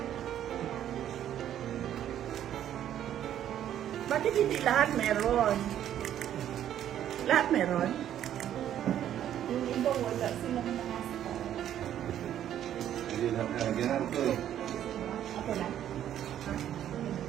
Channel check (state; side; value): quieter; left; 10.8 dB